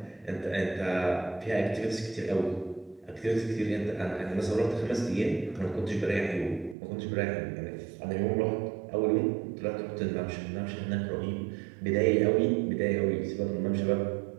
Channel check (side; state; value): left; drops out; at 6.8 s